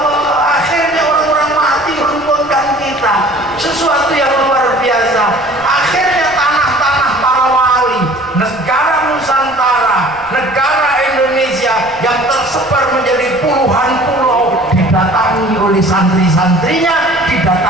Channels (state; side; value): noise; left; rumble, 25 dB below the sound